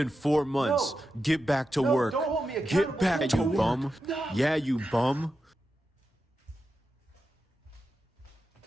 4 months. No. Get back to No, work. don't hold me accountable. Get back, Don't you do it. bum. No. Yeah, you bum.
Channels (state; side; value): normal; both; correlation 0.89